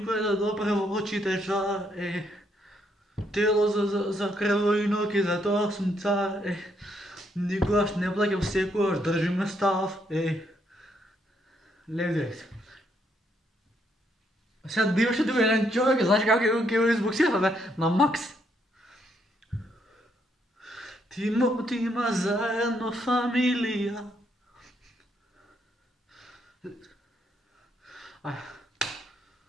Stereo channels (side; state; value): both; normal; correlation 0.74